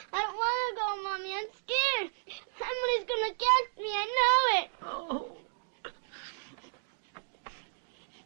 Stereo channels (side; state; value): left; silent; digital silence